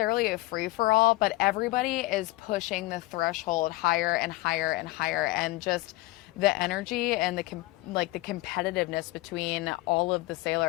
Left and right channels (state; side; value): quieter; right; 19.8 dB